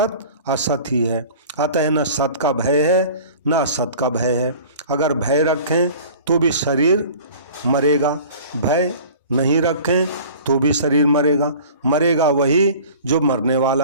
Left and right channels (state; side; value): inverted; both; correlation -0.43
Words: असत ही है, अतः न सत का भय है न असत का भय है। अगर भय रखें तो भी शरीर मरेगा, भय नहीं रखें तो भी शरीर मरेगा। मरेगा वही जो मरने